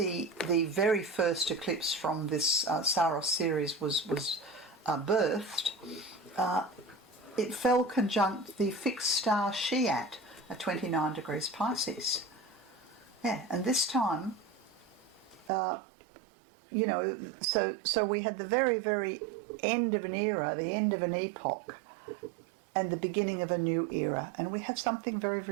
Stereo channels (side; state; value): left; drops out; at 15.5 s